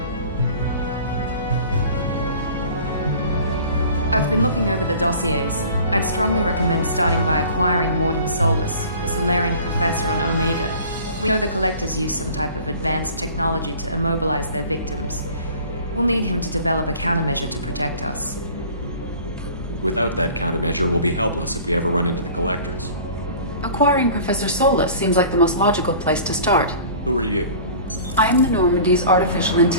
I've been looking over the dossiers. I'd strongly recommend starting by acquiring Morden Solus, the Solarian professor on Omega. We know the Collectors use some type of advanced technology to immobilize their victims. We'll need him to develop a countermeasure to protect us. Without that countermeasure, we'll be helpless if we ever run into the Collectors. Acquiring Professor Solus seems like the most logical place to start. Who are you? I am the Normandy's artificial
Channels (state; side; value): inverted; both; correlation -0.45